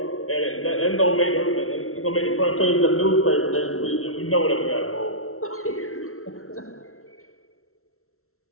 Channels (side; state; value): right; late; 0.63 ms